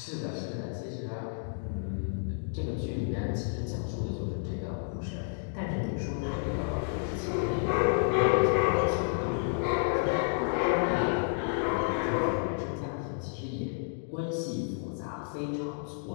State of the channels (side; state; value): right; silent; digital silence